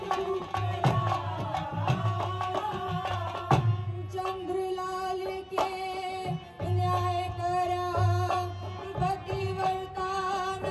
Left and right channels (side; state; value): both; identical; correlation 1.00